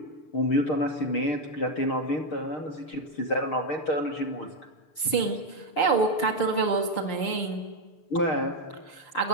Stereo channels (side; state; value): right; late; 6.7 ms